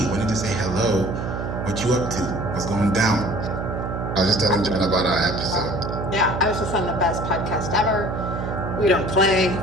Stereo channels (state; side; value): noise; right; hum, 4 dB below the sound